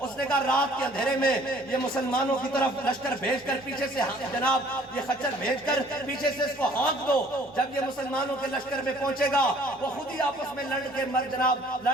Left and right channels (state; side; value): normal; both; correlation 0.56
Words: اس نے کہا رات کے اندھیرے میں یہ مسلمانوں کی طرف لشکر بھیج کر پیچھے سے جناب یہ خچر بھیج کر پیچھے سے اس کو ہانک دو، جب یہ مسلمانوں کے لشکر میں پہنچے گا وہ خود ہی آپس میں لڑ